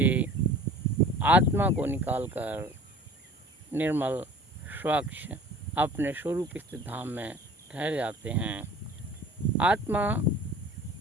आत्मा को निकालकर निर्मल स्वच्छ अपने स्वरूप स्थित धाम में ठहर जाते हैं। आत्मा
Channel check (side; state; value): both; normal; correlation 0.45